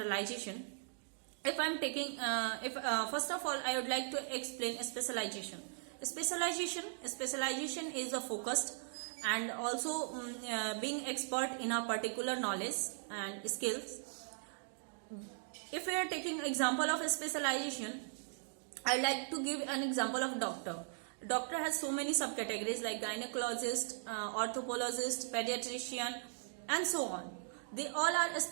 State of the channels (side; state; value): left; silent; digital silence